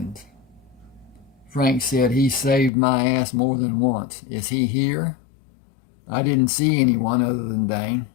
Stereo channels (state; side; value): drops out; right; at 2.7 s